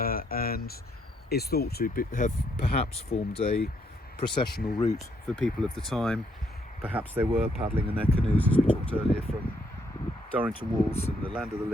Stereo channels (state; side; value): normal; both; correlation 0.72